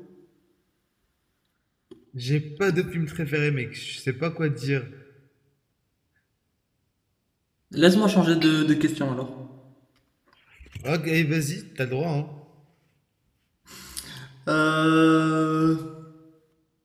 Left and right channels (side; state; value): both; identical; correlation 1.00